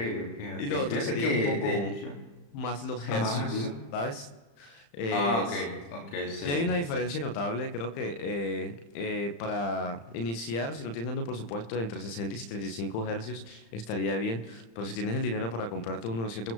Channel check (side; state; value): right; late; 35 ms